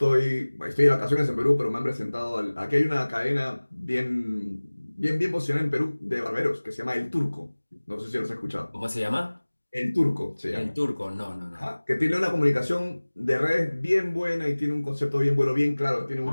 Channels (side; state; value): both; inverted; correlation -1.00